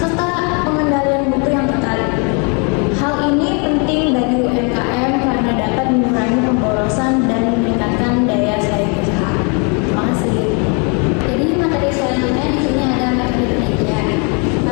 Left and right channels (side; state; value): right; quieter; 34.9 dB